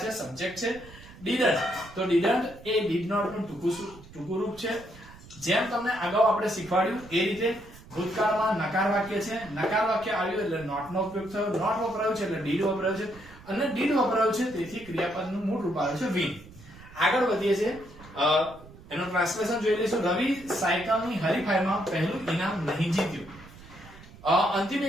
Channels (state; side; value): noise; right; rumble, 20 dB below the sound